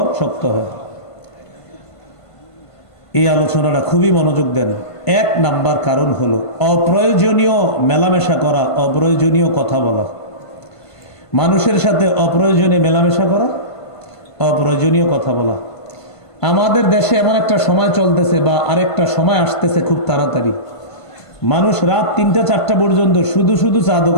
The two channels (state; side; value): late; right; 1.5 ms